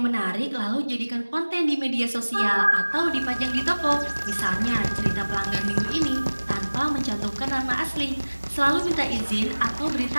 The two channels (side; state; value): both; inverted; correlation -1.00